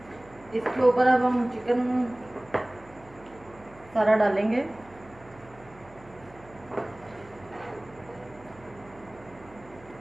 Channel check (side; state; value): right; noise; hum, 23 dB below the sound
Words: इसके ऊपर अब हम चिकन सारा डालेंगे।